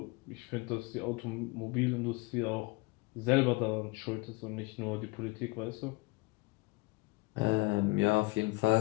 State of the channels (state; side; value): quieter; right; 24.2 dB